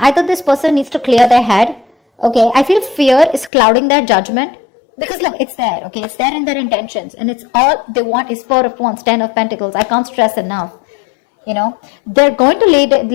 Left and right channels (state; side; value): drops out; right; at 3.5 s